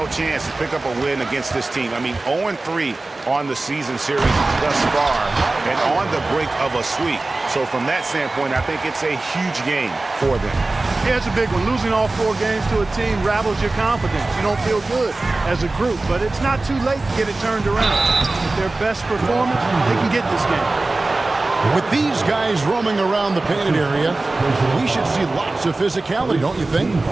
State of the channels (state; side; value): quieter; left; 3.2 dB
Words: chance to pick up a win against this team. I mean, 0-3 on the season series thus far and on the brink of a sweep. So from that standpoint, I think it's a huge game for them. Yeah, it's a big one. Losing all 4 games to a team rattles your confidence. You don't feel good as a group, but it's not too late to get it turned around. With their best performance, they can get this game. With these guys roaming around the painted area, we should see lots of physicality, don't you think?